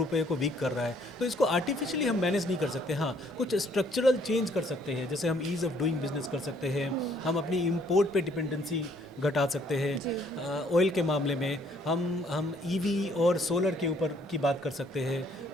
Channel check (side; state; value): both; normal; correlation 0.64